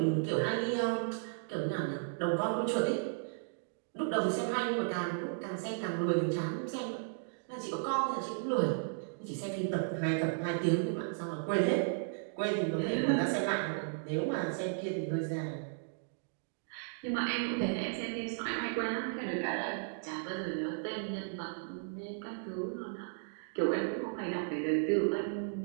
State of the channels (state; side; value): silent; left; digital silence